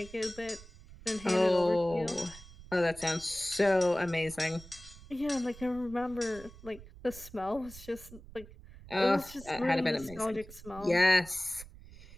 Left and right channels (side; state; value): right; noise; rumble, 18 dB below the sound